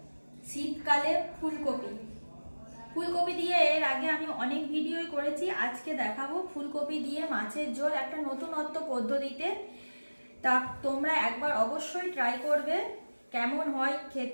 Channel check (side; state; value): both; inverted; correlation -1.00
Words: শীতকালে ফুলকপি ফুলকপি দিয়ে এর আগে আমি অনেক ভিডিওই করেছি। আজকে দেখাবো ফুলকপি দিয়ে মাছের ঝোল একটা নতুনত্ব পদ্ধতিতে। তা তোমরা একবার অবশ্যই ট্রাই করবে, কেমন হয়